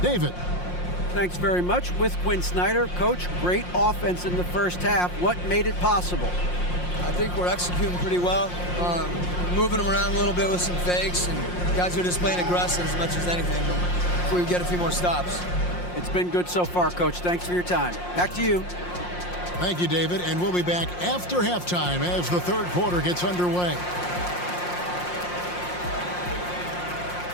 David. Thanks very much. With Quinn Snyder, Coach, great offense in the first half. What made it possible? I think we're executing pretty well. Moving them around a little bit with some fakes, and guys are just playing aggressive as much as anything. If we get a few more stops. It's been good so far, Coach. Thanks for your time. Back to you. Thank you, David. And we'll be back after halftime as the third quarter gets underway.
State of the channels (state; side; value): late; right; 5.6 ms